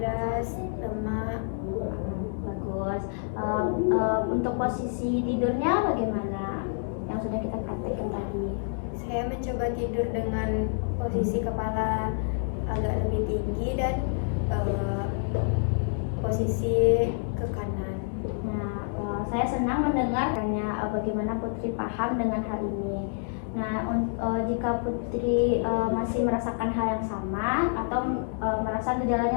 lemak. Bagus. Untuk posisi tidurnya bagaimana? Yang sudah kita praktekkan tadi. Saya mencoba tidur dengan posisi kepala agak lebih tinggi dan posisi ke kanan. Nah, saya senang mendengarkannya bagaimana Putri paham dengan hal ini. Nah, jika Putri masih merasakan hal yang sama atau merasa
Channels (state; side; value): silent; right; digital silence